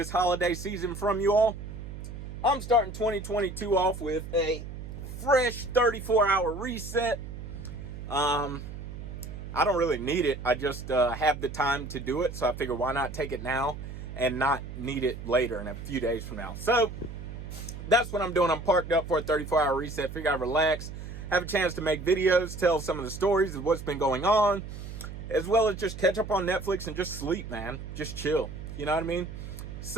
holiday season from you all. I'm starting 2022 off with a fresh 34-hour reset. I don't really need it. I just have the time to do it, so I figure why not take it now and not need it later in a few days from now. So that's what I'm doing. I'm parked up for a 34-hour reset. Figure I'd relax, have a chance to make videos, tell some of the stories of what's been going on, as well as just catch up on Netflix and just sleep, man. Just chill. You know what I mean?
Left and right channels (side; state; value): right; noise; hum, 10 dB below the sound